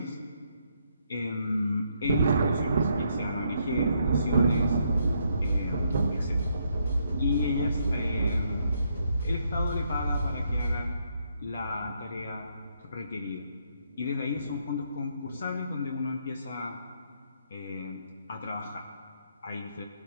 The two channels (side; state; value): both; inverted; correlation -0.74